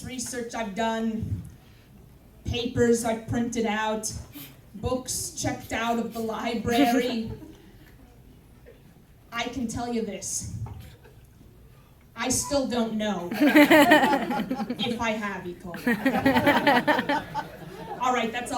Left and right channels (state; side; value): identical; both; correlation 1.00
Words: research I've done, papers I've printed out, books checked out of the library, I can tell you this. I still don't know if I have E. coli. All right, that's